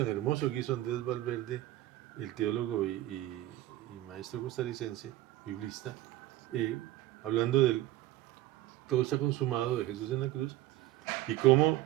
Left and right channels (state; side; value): quieter; left; 15.1 dB